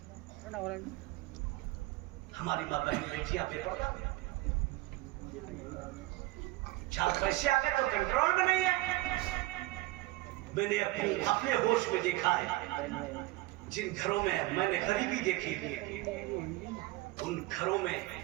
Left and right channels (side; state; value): left; quieter; 19.4 dB